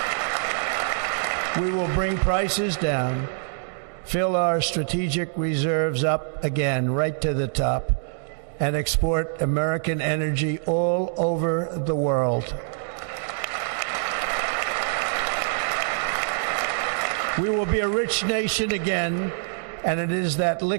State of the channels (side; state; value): left; silent; digital silence